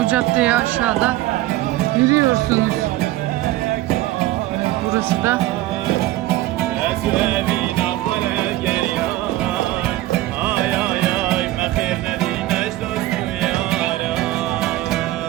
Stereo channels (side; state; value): left; quieter; 16.3 dB